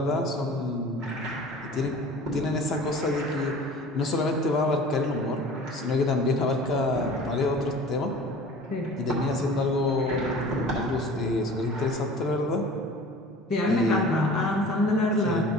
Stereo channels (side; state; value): both; normal; correlation 0.43